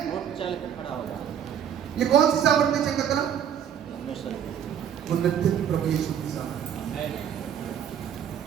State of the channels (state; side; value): quieter; left; 9.0 dB